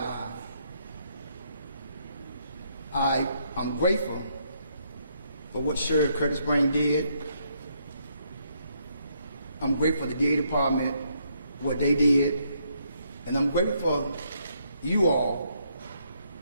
I'm grateful for what Sheriff Curtis Brain did. I'm grateful for the DA department, what they did, and I'm grateful for you all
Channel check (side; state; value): both; inverted; correlation -0.73